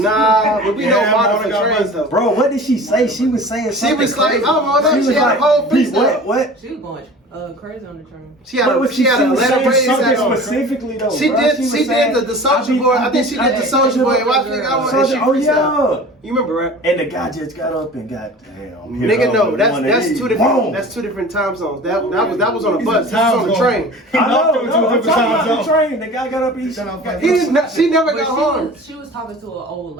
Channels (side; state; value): both; normal; correlation 0.40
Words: but we know Yeah, Martyr Martyr for got trains buses. though. Bro, what did she say? She was saying She something was like, crazy. oh, no, She was she had a whole "Pete, freestyle." what? She was going crazy on the train. She had What a was she had a was letter saying raised something at her. specifically though. She bro. did. was She saying, did the Soju boy. I think she did the Soju boy. Watch it. Soju, oh yeah. You remember, right? And the guy just got up and got damn. Nigga, no, that's two different. That's two different time zones. That was on a bus. This was on the train. I know, He no, knocked I'm him to talking a about the different train. The guy got up and Shut up, He didn't. She never But got harmed. she was talking to an old